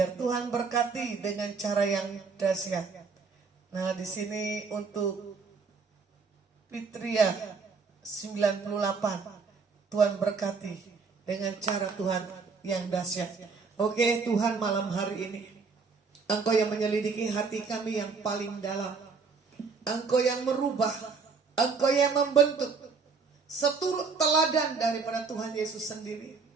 Tuhan berkati dengan cara yang dahsyat. Nah, di sini untuk Fitria 98. Tuhan berkati dengan cara Tuhan yang dahsyat. Oke, Tuhan malam hari ini, Engkau yang menyelidiki hati kami yang paling dalam. Engkau yang merubah, Engkau yang membentuk, seturut teladan daripada Tuhan Yesus sendiri.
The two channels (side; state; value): left; quieter; 4.9 dB